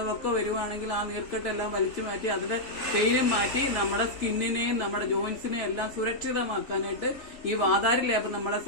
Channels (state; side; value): late; right; 3.4 ms